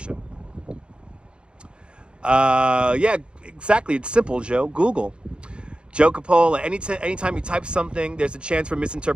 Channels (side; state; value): left; late; 0.054 ms